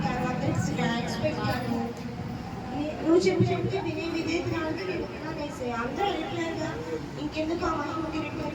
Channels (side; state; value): both; identical; correlation 1.00